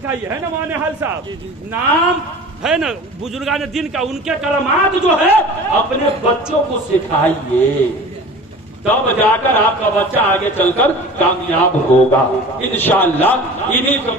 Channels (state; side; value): normal; both; correlation 0.39